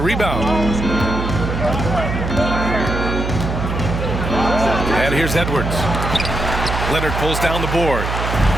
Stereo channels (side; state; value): right; noise; hum, 3 dB below the sound